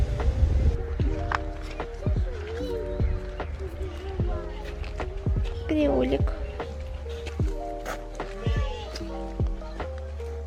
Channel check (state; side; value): identical; both; correlation 1.00